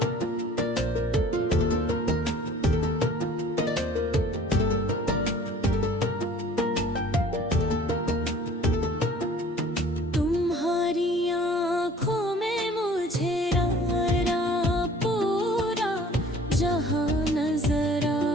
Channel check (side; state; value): both; normal; correlation 0.51